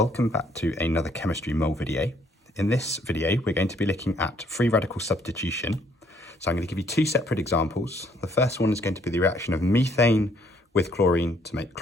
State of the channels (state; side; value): normal; both; correlation 0.66